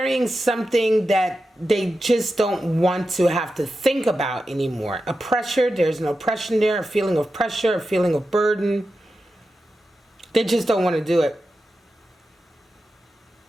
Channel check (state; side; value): normal; both; correlation 0.91